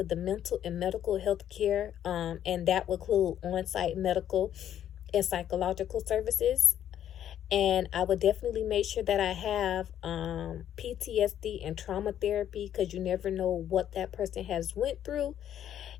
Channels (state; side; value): quieter; right; 10.5 dB